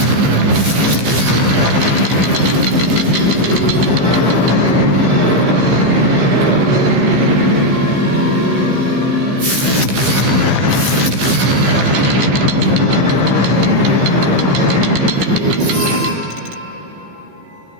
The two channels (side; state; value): left; late; 15 ms